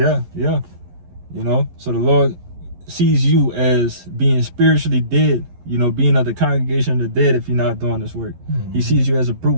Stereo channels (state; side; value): late; left; 11 ms